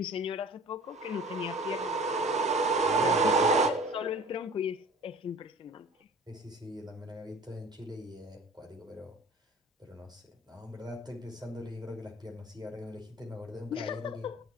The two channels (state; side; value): normal; both; correlation 0.44